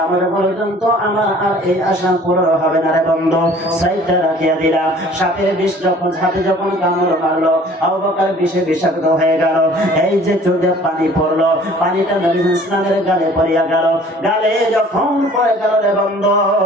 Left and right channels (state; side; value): normal; both; correlation 0.51